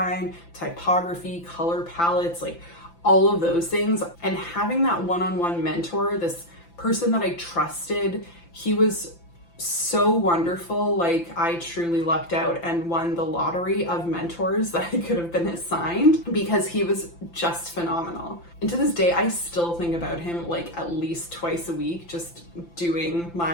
typography, color palettes, like all of those things. And having that one-on-one mentor, this person that I trusted, he was so wonderful. Like, I truly lucked out and won the lottery of mentors that I could have been assigned, because he was just phenomenal. And to this day, I still think about him like at least twice a week, just doing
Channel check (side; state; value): right; late; 5.9 ms